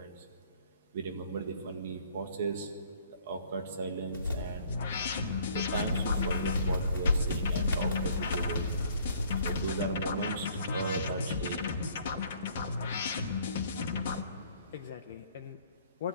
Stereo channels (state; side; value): inverted; both; correlation -0.59